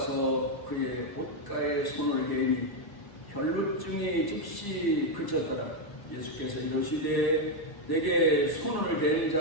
그의 옷가에 손을 대니 혈루증이 즉시 그쳤더라. 예수께서 이르시되 내게 손을 댄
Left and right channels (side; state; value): right; late; 1.0 ms